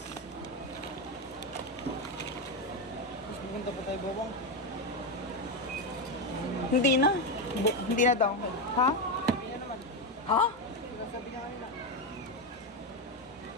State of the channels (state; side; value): normal; both; correlation 0.10